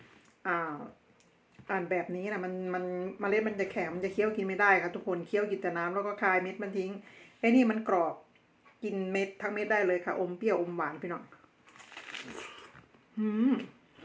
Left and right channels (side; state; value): both; identical; correlation 1.00